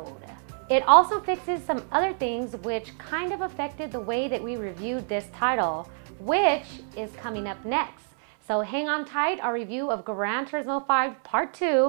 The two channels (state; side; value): silent; left; 60 dB below the other